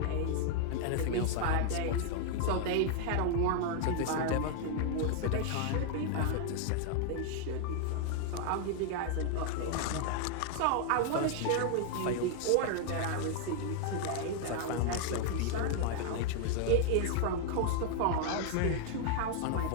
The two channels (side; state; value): both; different; correlation 0.00